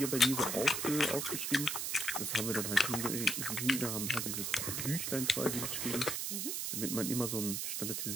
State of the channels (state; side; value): noise; right; hiss, 1 dB below the sound